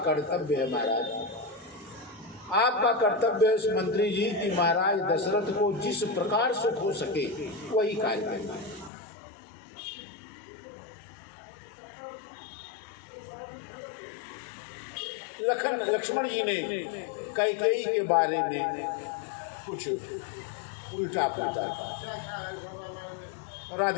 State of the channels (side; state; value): right; drops out; at 8.9 s